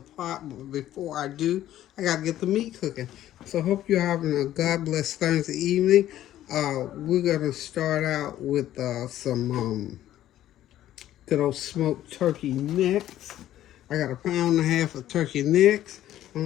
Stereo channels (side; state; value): right; quieter; 12.9 dB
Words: But before I do, I got to get the meat cooking. So hope you're having a God bless Thursday evening. We're going to start out with some good old smoked turkey necks. I got 1.5 pounds of turkey necks.